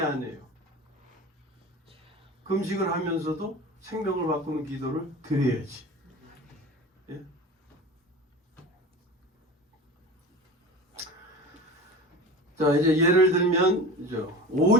금식을 하면서도 생명을 바꾸는 기도를 드려야지. 예? 자, 이제 예를 들면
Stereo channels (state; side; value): normal; both; correlation 0.33